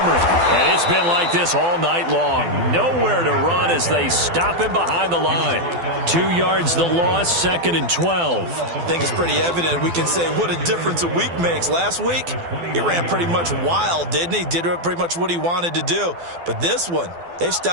And it's been like this all night long. Nowhere to run as they stop him behind the line. 2 yards the loss, 2nd and 12. I think it's pretty evident. We can say what a difference a week makes. Last week, he ran pretty much wild, didn't he? Did pretty much what he wanted to do. But this one, they've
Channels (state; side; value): late; left; 12 ms